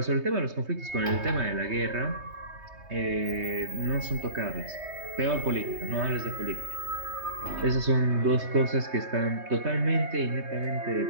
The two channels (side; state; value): left; late; 3.2 ms